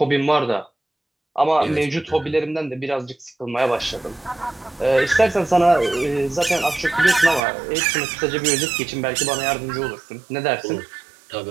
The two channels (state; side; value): drops out; left; at 7.4 s